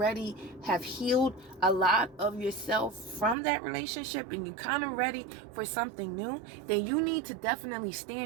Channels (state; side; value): drops out; left; at 3.4 s